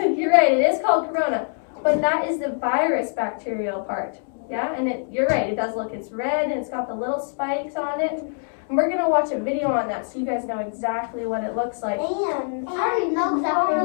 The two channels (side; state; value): right; silent; digital silence